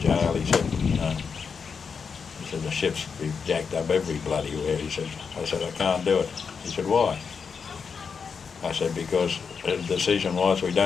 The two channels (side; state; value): right; quieter; 5.8 dB